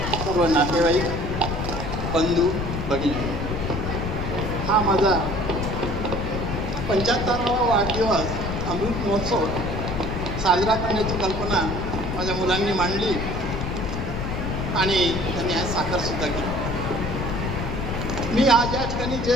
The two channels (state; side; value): noise; left; rumble, 3 dB below the sound